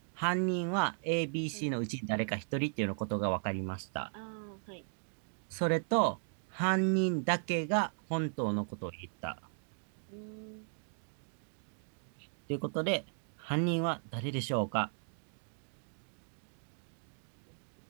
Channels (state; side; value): silent; left; digital silence